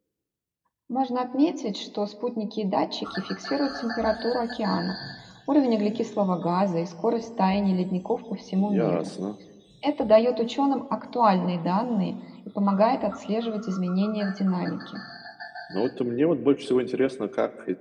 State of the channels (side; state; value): both; identical; correlation 1.00